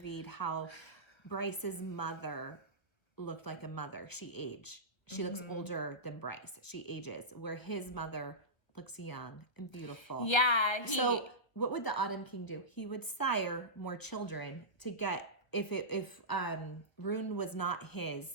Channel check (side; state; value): right; late; 1.4 ms